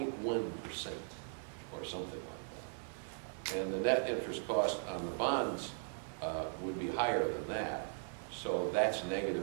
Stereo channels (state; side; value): silent; left; digital silence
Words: or something like that. And the net interest cost on the bonds would be higher than that. So that's negative